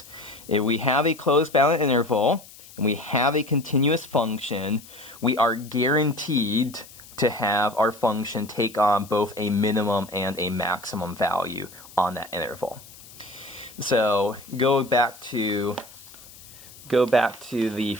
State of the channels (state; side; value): noise; left; hiss, 20 dB below the sound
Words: If we have a closed bounded interval, and we have a continuous function, we are guaranteed to have our function take on both a minimum and a maximum value on that interval. So go back to the